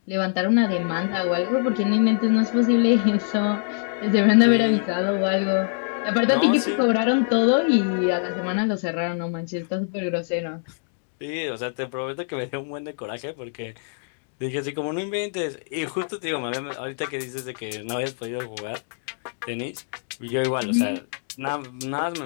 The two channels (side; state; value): right; silent; digital silence